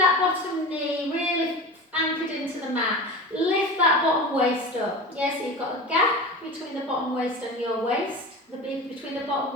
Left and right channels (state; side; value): normal; both; correlation 0.31